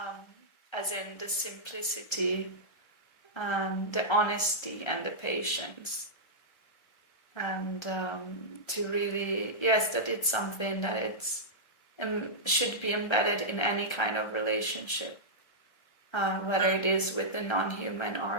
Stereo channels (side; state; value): right; late; 1.3 ms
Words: as in the simplicity, the honesty, and the patience. And to really, yes, that it's something that it's should be embedded in any kind of relationship, whether it is with the non-human